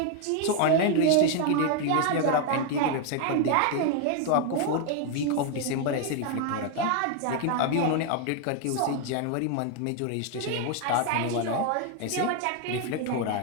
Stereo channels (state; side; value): different; both; correlation 0.01